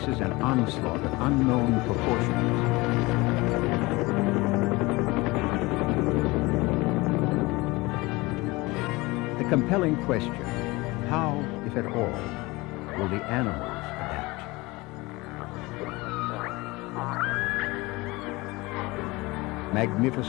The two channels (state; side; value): quieter; right; 22.6 dB